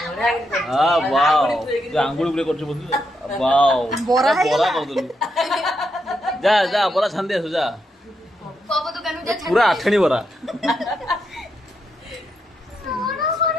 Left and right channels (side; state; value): both; normal; correlation 0.81